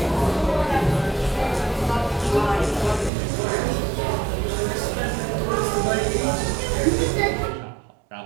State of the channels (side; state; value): left; drops out; at 3.1 s